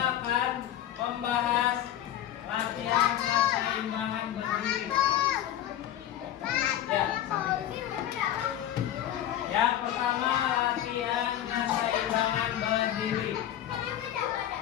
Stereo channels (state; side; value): quieter; right; 11.7 dB